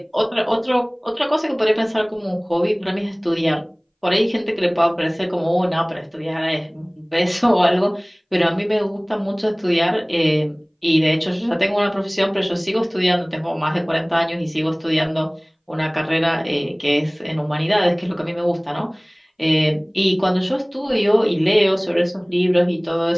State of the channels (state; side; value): identical; both; correlation 1.00